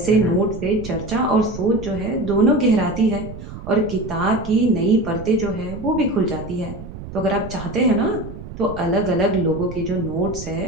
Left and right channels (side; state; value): right; noise; rumble, 12 dB below the sound